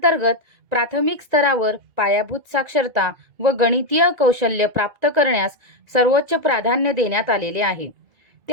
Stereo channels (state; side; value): late; left; 2.3 ms